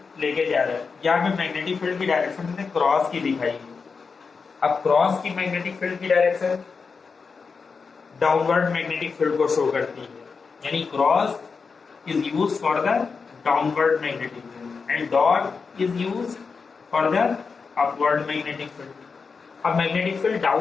लेके जा रहा है। यहाँ पे मैग्नेटिक फील्ड की डायरेक्शन हमने क्रॉस की दिखाई है। अब क्रॉस की मैग्नेटिक फील्ड की डायरेक्शन डाउनवर्ड मैग्नेटिक फील्ड को शो करती है, यानी cross is used for the downward magnetic field and dot is used for the upward magnetic field. अब मैग्नेटिक फील्ड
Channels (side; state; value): right; quieter; 5.1 dB